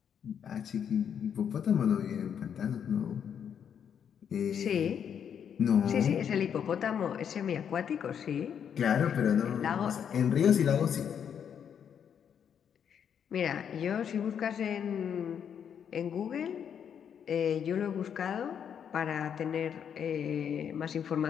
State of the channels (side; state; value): right; quieter; 8.1 dB